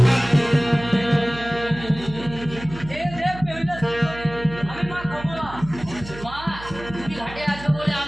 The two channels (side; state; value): right; noise; hum, 14 dB below the sound